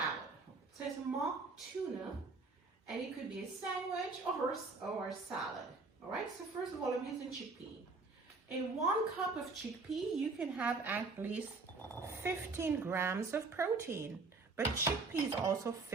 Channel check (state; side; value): quieter; left; 3.9 dB